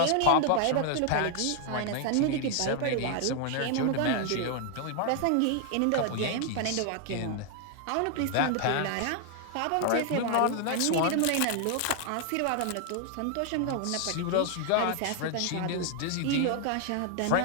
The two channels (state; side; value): different; both; correlation 0.00